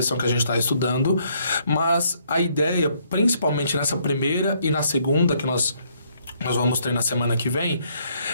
que a gente está estudando, mas a ideia, principalmente nessa primeira e na segunda, que nós vamos ter na semana que vem,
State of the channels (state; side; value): inverted; both; correlation -0.69